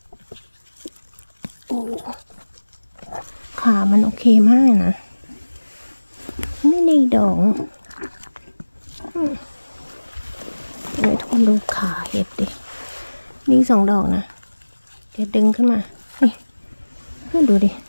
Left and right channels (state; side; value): inverted; both; correlation -1.00